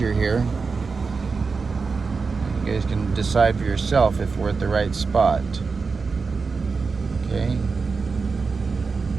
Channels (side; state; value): left; quieter; 4.7 dB